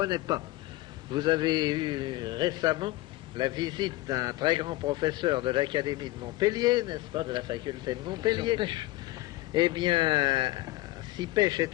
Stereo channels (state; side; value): quieter; right; 18.1 dB